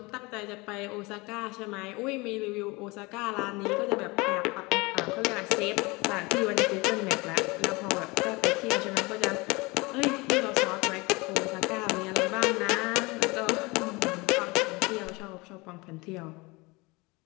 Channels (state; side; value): quieter; right; 24.7 dB